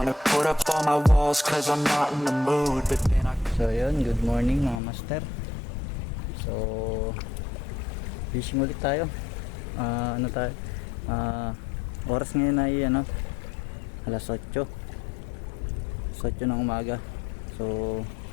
put up all my walls, cause I'm not in the mood. But then I... So yun, good morning mga master. So fishing ulit tayo. Ano tayo? Oras ngayon ay alas 8 ng umaga. So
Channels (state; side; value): drops out; right; at 4.8 s